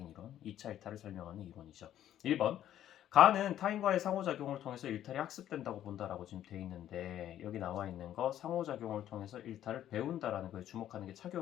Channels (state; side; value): quieter; right; 11.5 dB